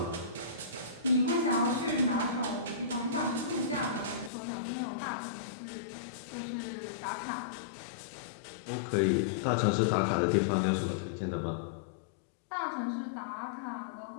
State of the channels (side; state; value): right; drops out; at 4.3 s